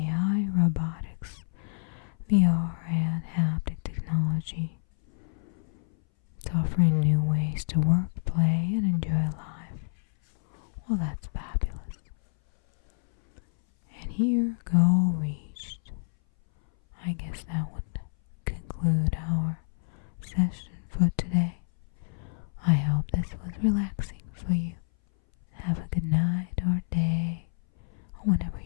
robotics, VR, and haptic technology. It's offering new ways to work, play, and enjoy life. Well, that's fabulous. And here, goal reached. I guess that would conclude our session for today. I hope this was relaxing for you. Have a good night or day, or whenever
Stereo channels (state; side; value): silent; right; 59 dB below the other